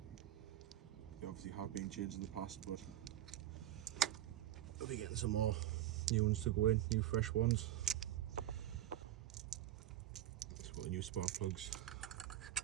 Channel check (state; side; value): quieter; left; 12.7 dB